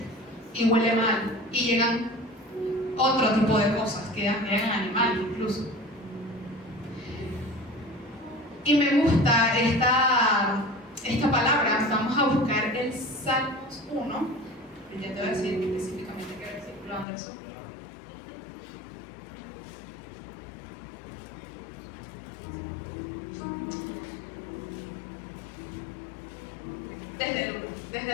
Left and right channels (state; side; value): drops out; right; at 17.1 s